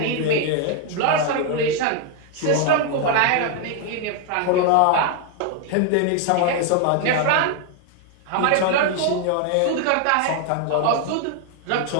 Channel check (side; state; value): both; different; correlation 0.00